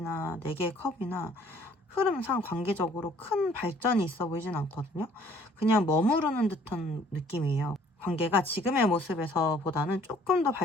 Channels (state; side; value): normal; both; correlation 0.58